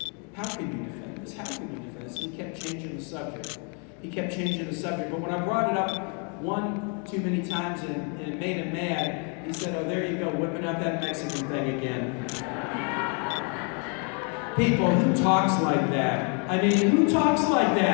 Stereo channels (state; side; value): quieter; right; 38.1 dB